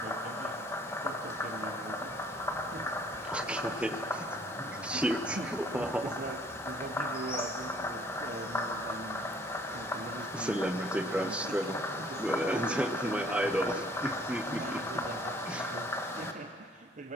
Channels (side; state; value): both; normal; correlation 0.58